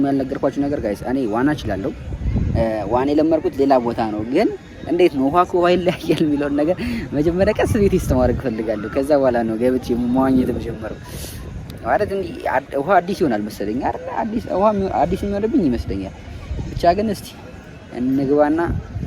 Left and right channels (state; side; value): identical; both; correlation 1.00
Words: ያልነገርኳችሁ ነገር ጋይስ እኔ ዋና እችላለሁ። ዋና የለመድኩት ሌላ ቦታ ነው ግን እንዴት ነው ውሃ ከውሃ ይለያያል የሚለውን ነገር መጀመሪያ ቀስ ቤት ማድረግ እፈልጋለሁ። ከዛ በኋላ ነው ገብቼ መዋኘት የምጀምረው። ማለት እንዲህ ውሃ አዲስ ይሆናል መሰለኝ አይደል? አዲስ የሚሆንብኝ ይመስለኛል። ብቻ ግን እስቲ እንግባና